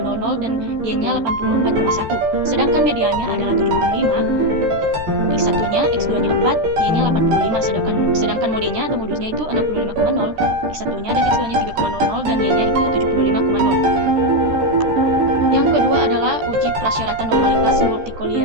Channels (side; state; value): left; late; 13 ms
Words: dan Y-nya 84,1. Sedangkan mediannya adalah 75, X1-nya, X2-nya 4, Y-nya 85. Sedangkan modenya atau modusnya itu 65,0, X1-nya dan X2-nya 3,00 dan Y-nya itu 75,0. Yang kedua adalah uji prasyaratan normalitas,